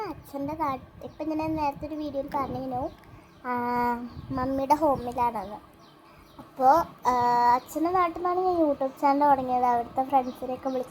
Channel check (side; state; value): both; identical; correlation 1.00